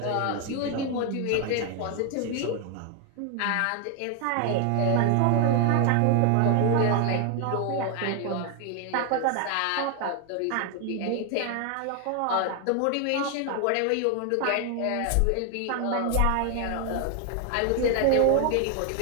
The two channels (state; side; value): different; both; correlation 0.00